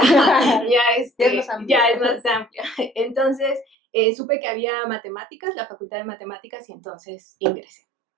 Ya es más amplio. ya es más amplia. Entonces, supe que había matemáticas, la facultad de matemáticas, y entonces ingresé.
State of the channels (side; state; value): left; drops out; at 3.7 s